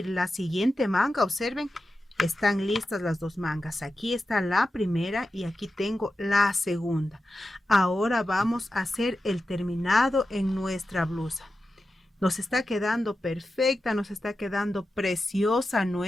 la siguiente manga, observen, están listas las 2 mangas. Aquí está la primera y aquí tengo la segunda. Ahora vamos a hacer el terminado en nuestra blusa. Nos está quedando perfecta, nos está quedando preciosa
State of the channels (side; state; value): both; normal; correlation 0.92